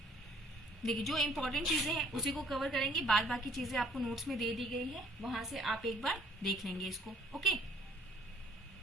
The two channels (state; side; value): normal; both; correlation 0.59